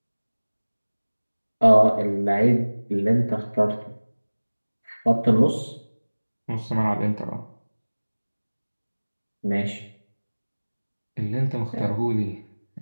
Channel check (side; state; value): both; inverted; correlation -1.00